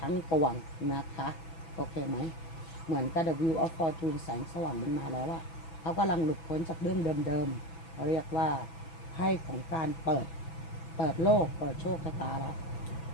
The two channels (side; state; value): right; late; 6.0 ms